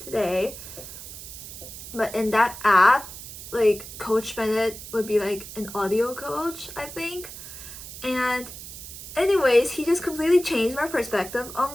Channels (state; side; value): noise; right; hiss, 12 dB below the sound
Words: today. But in that app, like, Coach Bennett would be like an audio coach, I think. And anyways, he just completely changed my perspective